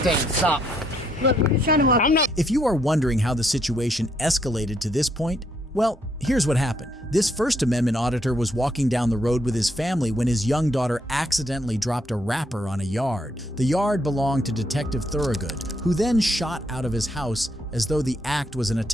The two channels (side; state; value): both; normal; correlation 0.73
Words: Stop. Look, we're just trying to walk. I'm not. If you are wondering how the situation escalated to this point, well, here's what happened. This First Amendment auditor was walking down the road with his family when his young daughter accidentally dropped a wrapper on a yard. The yard belonged to Detective Thorogood, who then shot out of his house as though the act was an